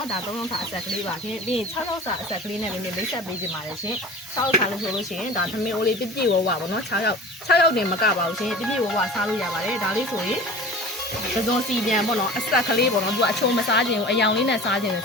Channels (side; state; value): both; normal; correlation 0.39